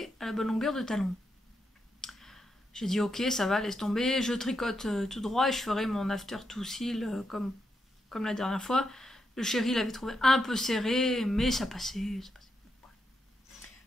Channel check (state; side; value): normal; both; correlation 0.83